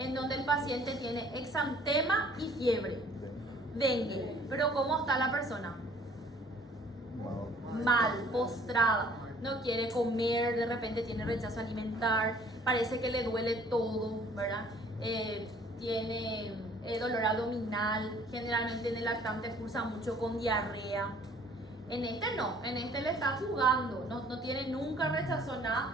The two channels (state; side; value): normal; both; correlation 0.56